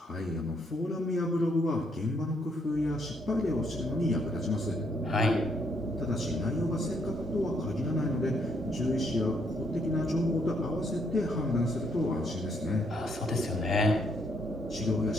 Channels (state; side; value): normal; both; correlation 0.71